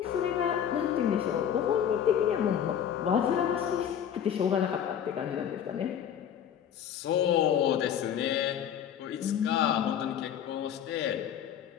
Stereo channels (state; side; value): quieter; right; 9.2 dB